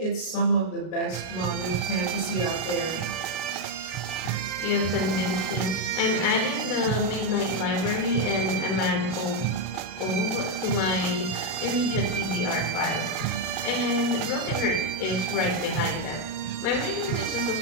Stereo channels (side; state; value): right; late; 32 ms